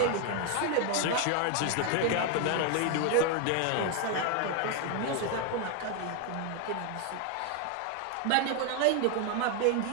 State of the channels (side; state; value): both; different; correlation 0.01